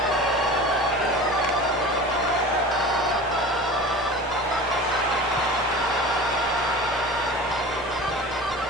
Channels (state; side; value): normal; both; correlation 0.36